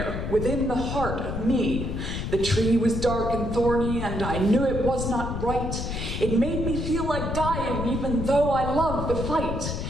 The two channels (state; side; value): noise; left; rumble, 4 dB below the sound